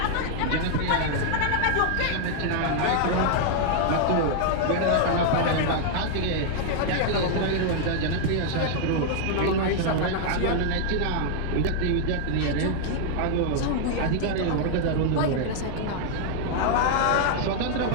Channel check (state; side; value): different; both; correlation 0.00